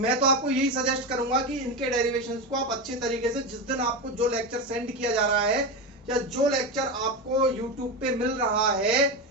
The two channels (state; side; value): normal; both; correlation 0.17